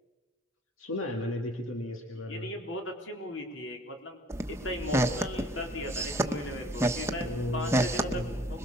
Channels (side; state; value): both; normal; correlation 0.56